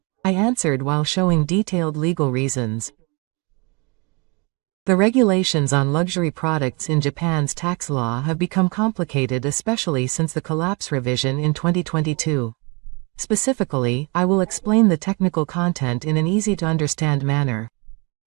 I answered while showing detailed legal reasons. The regulations on luxury products in Japan's tax law have become complicated, especially since the collapse revision in 2022. Specifically, I will explain the technical content in an easy-to-understand manner.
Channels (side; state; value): left; quieter; 30.0 dB